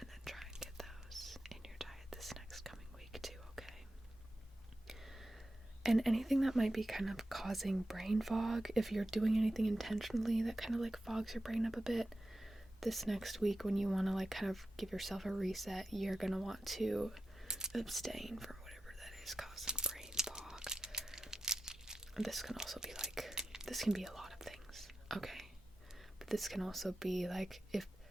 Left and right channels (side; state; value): both; normal; correlation 0.91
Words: then try and get those in your diet this next coming week too, okay? And anything that might be kind of causing brain fog, if you're doing anything intentionally that kind of like fogs your brain up a bit, this next week when you want to like kind of give yourself a reset, you're going to want to abstain from whatever that is causing brain fog. And this can also be like, this can be a lot of things, okay? But this can also be like, if